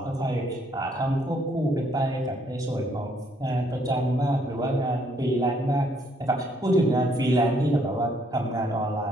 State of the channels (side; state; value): both; normal; correlation 0.68